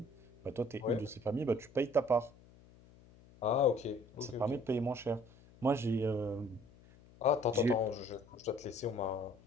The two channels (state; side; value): noise; left; hum, 24 dB below the sound